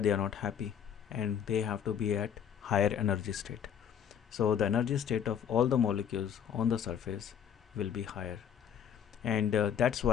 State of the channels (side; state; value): right; quieter; 8.5 dB